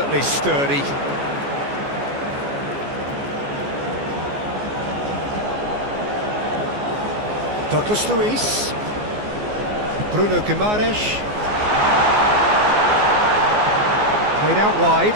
sturdy. Douglas Luiz, Bruno Guimaraes, played out wide,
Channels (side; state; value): left; late; 14 ms